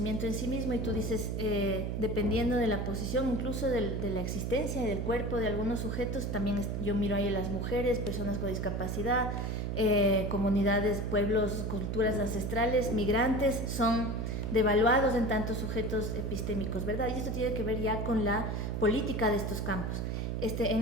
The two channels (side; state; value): right; noise; hum, 2 dB below the sound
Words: en sí mismo y tú dices, dependiendo de la posición, incluso de la existencia del cuerpo de algunos sujetos, también yo miro ahí a las mujeres, personas con discapacidad, comunidades, pueblos, culturas ancestrales, migrantes, son devaluados en tantos sujetos epistémicos, ¿verdad? Y esto tiene que ver ya con la política de estos campos.